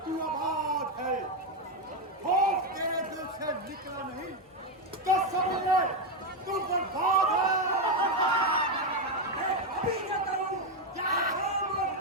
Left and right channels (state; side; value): normal; both; correlation 0.06